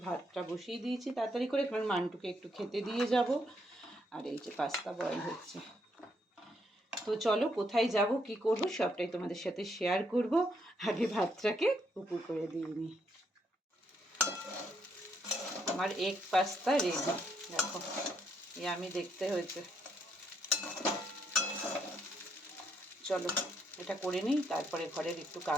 ভাতটা বসিয়ে দিয়েছি তাড়াতাড়ি করে, কারণ মান্টুকে একটু খেতে দিয়ে যাব। আর এই যে পাস্তা বয়েল হচ্ছে। তো চলো কোথায় যাব কি করব সবটাই তোমাদের সাথে শেয়ার করব। আগে ভাতটাকে উপর করে দিয়ে নিই। আমার এগ পাস্তা রেডি, দেখো আমি দেখতে হয়েছে। চলো এটা করে নিই, তারপরে ঘরের একটু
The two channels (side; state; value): both; normal; correlation 0.74